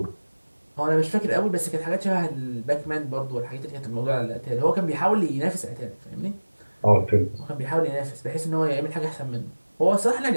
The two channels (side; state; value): both; inverted; correlation -1.00